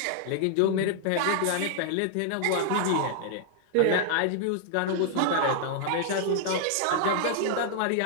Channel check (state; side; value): different; both; correlation -0.01